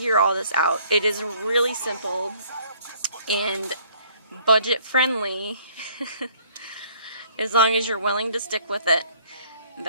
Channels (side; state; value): both; inverted; correlation -0.60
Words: all this out. It is really simple and budget friendly as long as you're willing to stick with it.